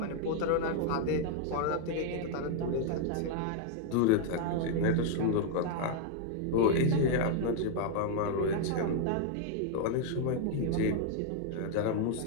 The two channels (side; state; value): both; different; correlation 0.00